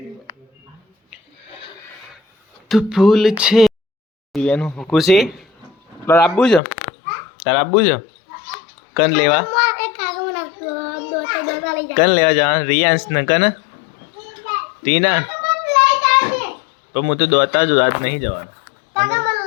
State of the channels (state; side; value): drops out; right; at 6.6 s